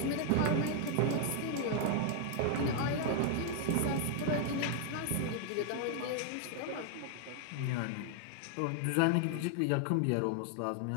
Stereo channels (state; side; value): different; both; correlation 0.00